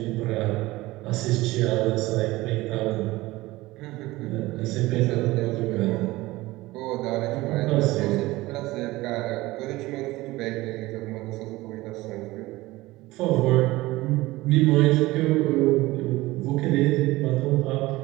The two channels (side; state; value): left; quieter; 19.2 dB